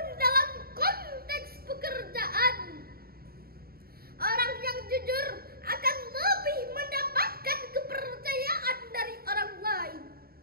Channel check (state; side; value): late; left; 0.44 ms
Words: dalam konteks pekerjaan. Orang yang jujur akan lebih mendapatkan kepercayaan dari orang lain.